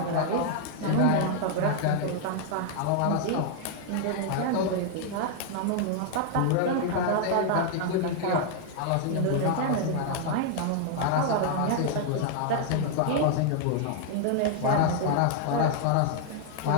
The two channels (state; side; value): different; both; correlation 0.00